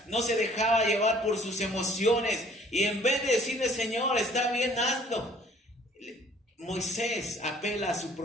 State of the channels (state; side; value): normal; both; correlation 0.56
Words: No se dejaba llevar por sus emociones. Y en vez de decirle, Señor, está bien, hazlo, Moisés apela a su